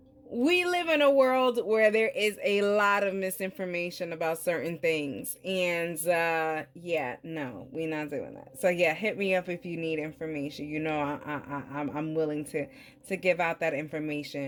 we live in a world where there is a lot of misinformation about certain things. And yeah, no, we're not doing that. So yeah, hit me up if you need information. I'm willing to give out that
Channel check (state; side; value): identical; both; correlation 1.00